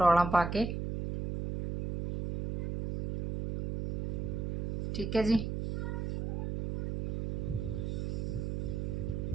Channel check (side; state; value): right; noise; hum, 2 dB below the sound